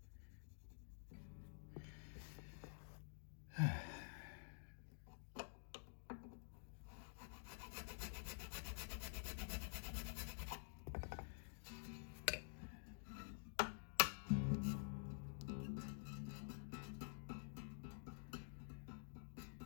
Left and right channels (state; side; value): silent; right; digital silence